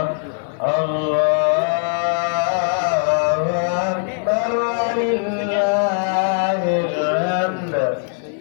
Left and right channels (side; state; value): right; silent; 55 dB below the other